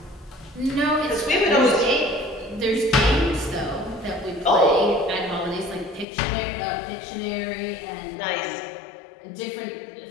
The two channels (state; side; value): drops out; right; at 6.1 s